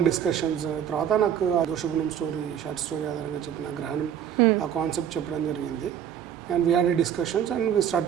discussions. తర్వాత నాకు ఆ దోషగుణం స్టోరీ, షార్ట్ స్టోరీ ఆధారంగా చెప్పిన గ్రహణం ఆ కాన్సెప్ట్ చెప్పడం జరిగింది. And we had a discussions and we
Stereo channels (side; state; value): left; quieter; 9.4 dB